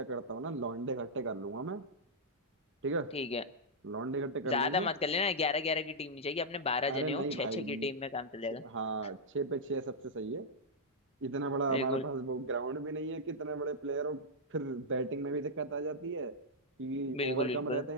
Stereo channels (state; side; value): normal; both; correlation -0.07